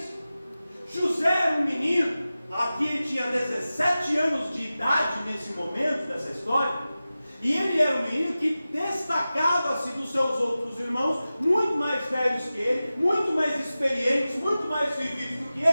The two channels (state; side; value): inverted; both; correlation -0.95